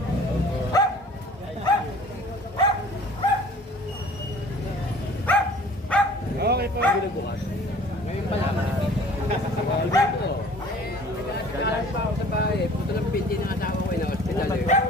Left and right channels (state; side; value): normal; both; correlation 0.49